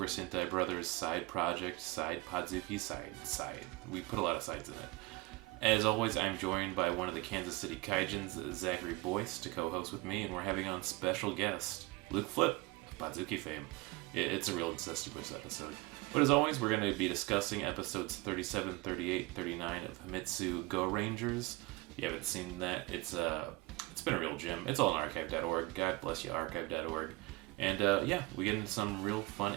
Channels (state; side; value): quieter; left; 22.8 dB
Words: Sentai Brothers side project, side Podzooky, side. We put a lot of sides in it. As always, I'm joined by one of the Kansas City Kaijins, Zachary Boyce, to co-host with me, and we're having on special guest, Luke Flip, of Podzooky fame. It's a real incestuous episode. But as always, we're going to be discussing episodes 37, 38, 39 of Himitsu Gorangers. If you haven't seen that, it's been a real gem. It's all on archive.org. God bless you, archive.org. And we get into some real fun